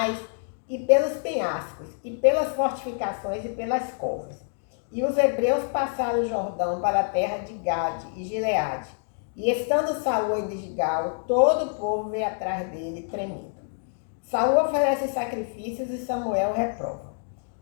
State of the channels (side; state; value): right; silent; 61 dB below the other